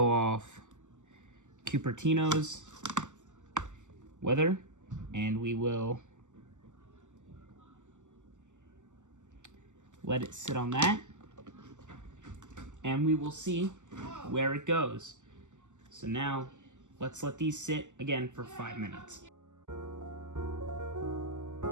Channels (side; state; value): left; late; 0.85 ms